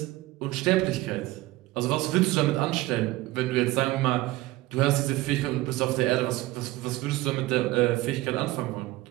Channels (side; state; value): left; quieter; 18.2 dB